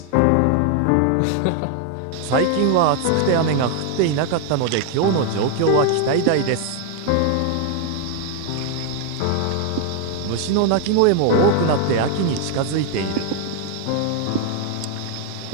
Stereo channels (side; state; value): both; different; correlation 0.00